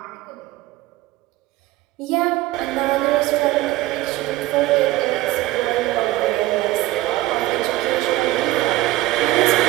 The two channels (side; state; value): left; quieter; 17.0 dB